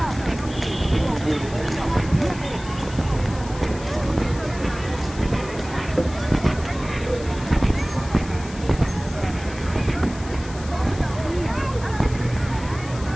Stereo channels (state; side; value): noise; left; hiss, 17 dB below the sound